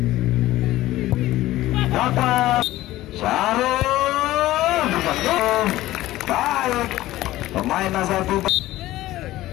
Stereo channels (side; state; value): right; quieter; 16.1 dB